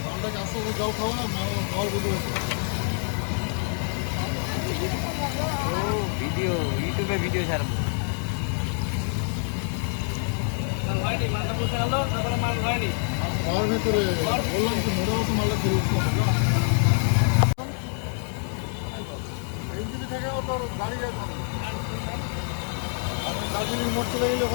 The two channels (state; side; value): silent; right; 61 dB below the other